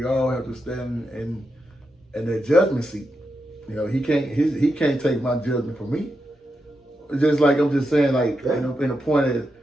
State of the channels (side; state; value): both; normal; correlation 0.86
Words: all have to stand in that judgment seat. He can't take my judgment from me. Just like I'm just saying, like in a point is,